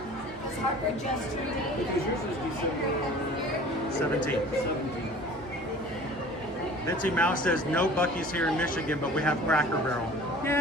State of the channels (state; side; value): normal; both; correlation 0.45